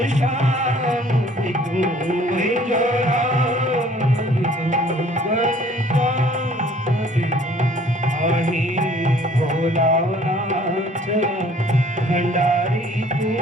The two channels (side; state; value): both; normal; correlation 0.55